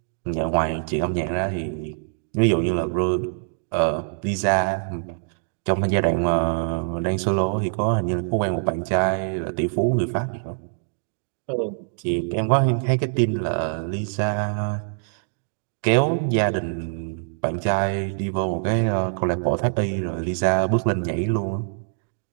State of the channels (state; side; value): silent; left; digital silence